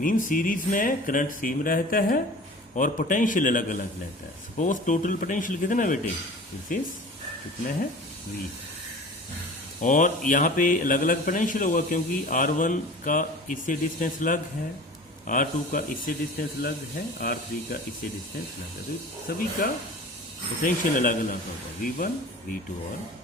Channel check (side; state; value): both; normal; correlation 0.40